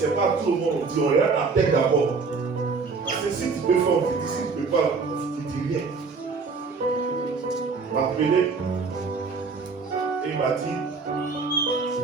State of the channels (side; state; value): left; quieter; 4.6 dB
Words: pas tout le monde. On dit, on regarde la tête d'abord. Parce que si tu peux faire, on te dit, si tu ne peux pas, on ne te dit rien. Il m'a appelé. Et il m'a dit,